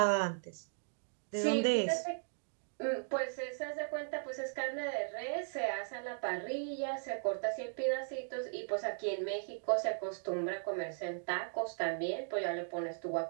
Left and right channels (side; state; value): left; silent; digital silence